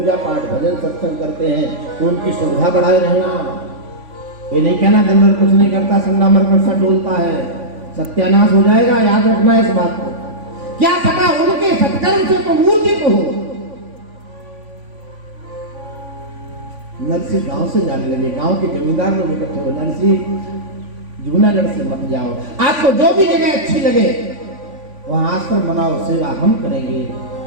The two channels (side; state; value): left; late; 3.5 ms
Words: पाठ भजन सत्संग करते हैं तो उनकी सुविधा बढ़ाए रहना। ये नहीं कहना दिन भर कुछ नहीं करता, संडा मरकर सा डोलता है, सत्यानाश हो जाएगा। याद रखना है इस बात को। क्या पता उनके सत्कर्म से तो मूर्ति को हो। नरसी गांव से जाने लगे, गांव के जमींदार लोग इकट्ठे हो, नरसी जूनागढ़ से मत जाओ, आपको जो भी जगह अच्छी लगे वहां आश्रम बनाओ, सेवा हम करेंगे,